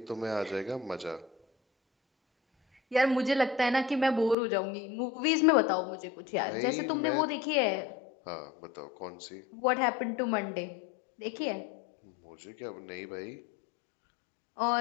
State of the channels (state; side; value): drops out; right; at 4.4 s